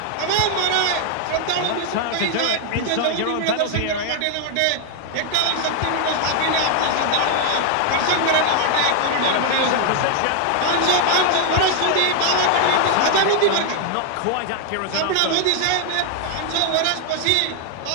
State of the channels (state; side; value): different; both; correlation 0.00